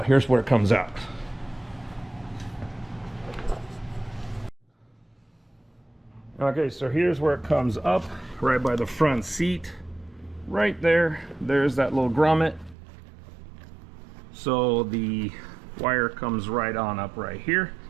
Here's where it comes out. Okay, so here's where it comes up, right by the front seat. Right there, there's that little grommet. So the wire comes right on up right here.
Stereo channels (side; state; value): left; drops out; at 12.8 s